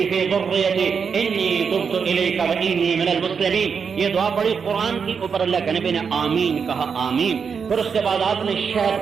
في ذريتي انی تبت الیک وانی من المسلمین. یہ دعا پڑھی قرآن کی, اوپر اللہ کے نبی نے آمین کہا, آمین. پھر اس کے بعد آپ نے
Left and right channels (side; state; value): left; quieter; 6.2 dB